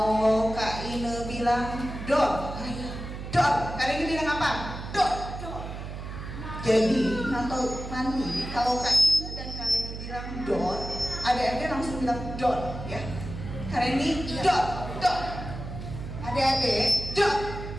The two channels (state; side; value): noise; right; hum, 8 dB below the sound